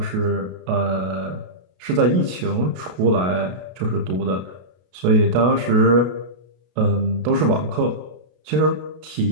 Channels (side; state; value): left; late; 33 ms